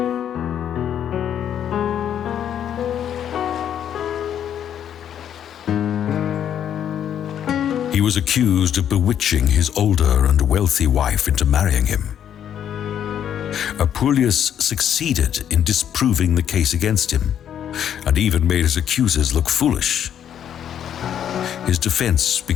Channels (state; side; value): quieter; right; 9.6 dB